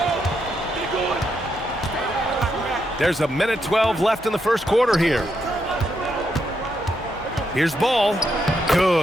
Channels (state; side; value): normal; both; correlation 0.80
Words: There's a minute 12 left in the first quarter here. Here's Ball.